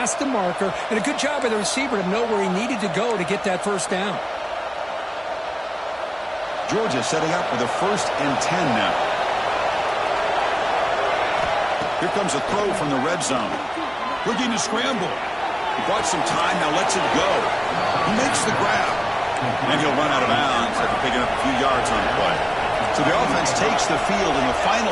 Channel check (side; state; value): both; identical; correlation 1.00